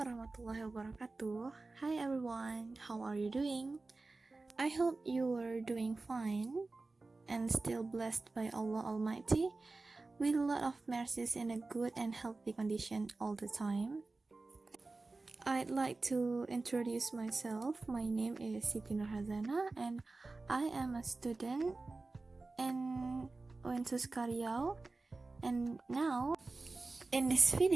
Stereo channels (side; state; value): left; quieter; 3.5 dB